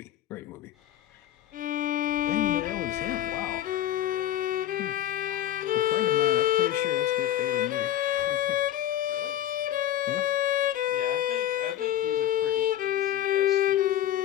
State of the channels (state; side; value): quieter; right; 12.2 dB